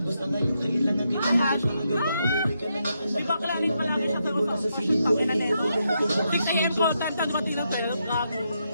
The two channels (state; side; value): inverted; both; correlation -0.81